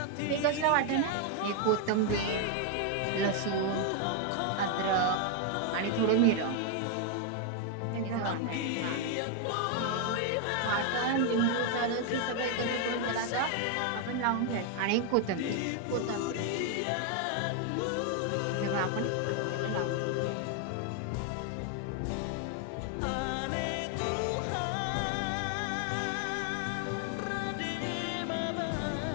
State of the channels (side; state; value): both; different; correlation 0.01